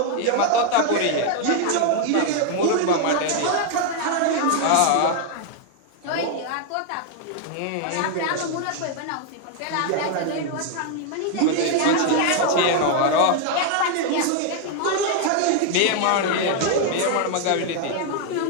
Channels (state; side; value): different; both; correlation 0.00